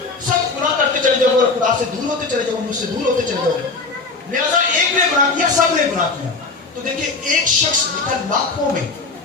سب گناہ کرتے چلے جاؤ گے، خدا سے دور ہوتے چلے جاؤ گے، مجھ سے دور ہوتے چلے جاؤ گے، لہذا ایک نے گناہ کیا سب نے گناہ کیا۔ تو دیکھیں ایک شخص لکھا لاکھوں میں،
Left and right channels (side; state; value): right; quieter; 4.0 dB